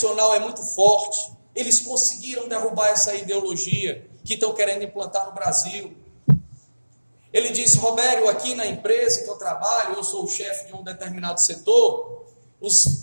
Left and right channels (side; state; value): both; inverted; correlation -1.00